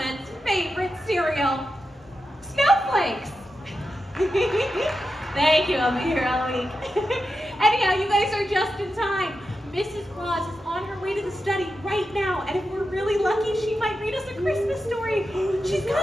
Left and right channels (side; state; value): both; normal; correlation 0.89